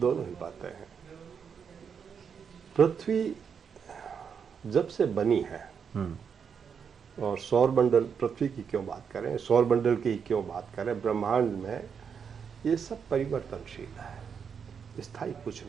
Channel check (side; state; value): left; quieter; 6.8 dB